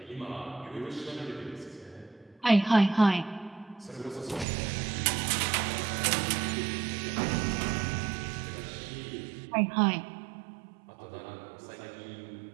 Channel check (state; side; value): drops out; left; at 4.5 s